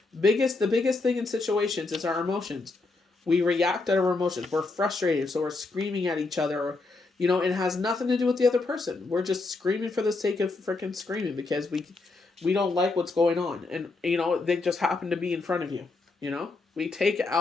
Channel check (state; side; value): quieter; right; 3.6 dB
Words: The biggest thing in situations is our emotions. We react to our emotions. We're frustrated, so we're screaming at each other. Or, it has nothing to do with the other person. We're just screaming for the sake of freaking screaming because we don't like what's going on. And, they just happen to be in front of you. We take